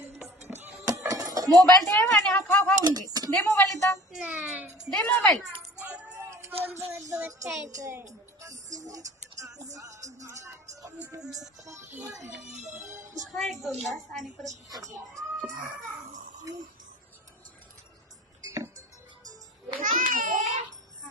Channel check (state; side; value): normal; both; correlation 0.45